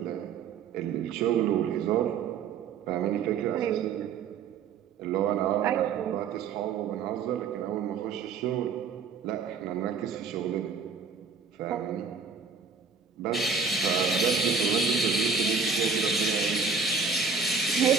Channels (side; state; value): left; quieter; 5.5 dB